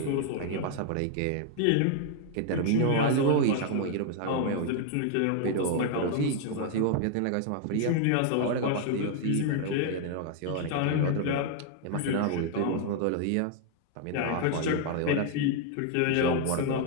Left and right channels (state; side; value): different; both; correlation 0.00